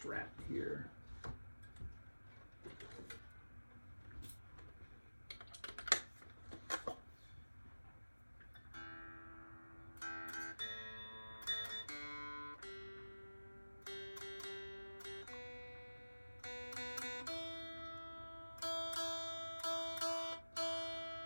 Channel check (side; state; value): both; inverted; correlation -1.00